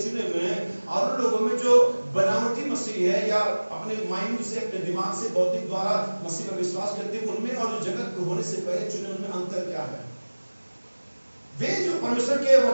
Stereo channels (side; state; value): both; inverted; correlation -1.00